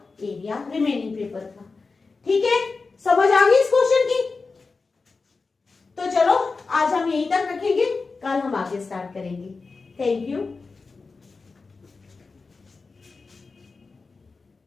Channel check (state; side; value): quieter; right; 4.2 dB